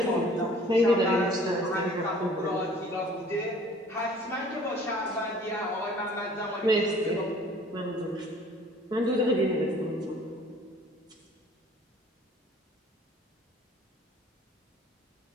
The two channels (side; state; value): both; normal; correlation 0.52